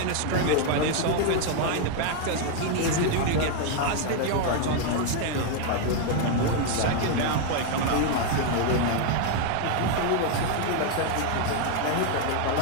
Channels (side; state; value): both; different; correlation 0.01